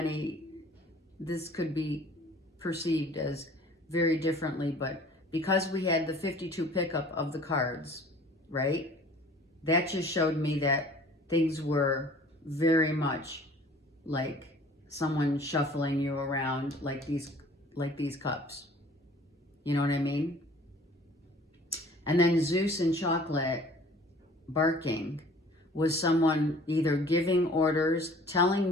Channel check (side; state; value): both; normal; correlation 0.50